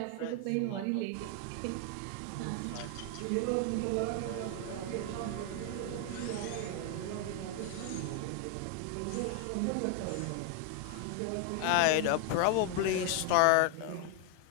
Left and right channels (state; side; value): different; both; correlation 0.01